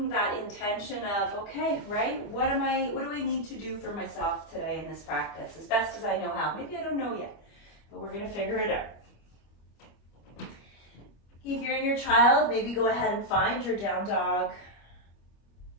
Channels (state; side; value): late; right; 25 ms